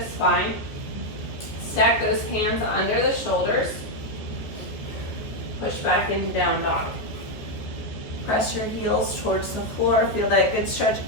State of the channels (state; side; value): late; right; 14 ms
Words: spine. Stack those hands under the shoulders. Push back into down dog. Press your heels towards the floor. Feel that good stretch